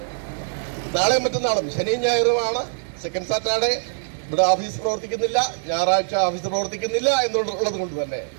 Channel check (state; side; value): silent; left; 62 dB below the other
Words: നാളെയും മറ്റന്നാളും ശനിയും ഞായറുമാണ് സെക്കൻഡ് സാറ്റർഡേ. ഇവിടെ ഓഫീസ് പ്രവർത്തിക്കുന്നില്ല, ഞായറാഴ്ച ഓഫീസ് പ്രവർത്തിക്കുന്നില്ല എന്നുള്ളത് കൊണ്ട് തന്നെ